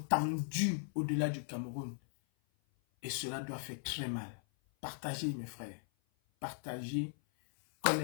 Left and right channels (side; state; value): right; silent; 53 dB below the other